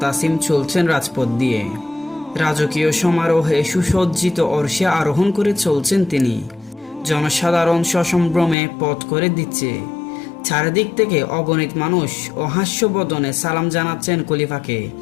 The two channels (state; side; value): drops out; right; at 8.6 s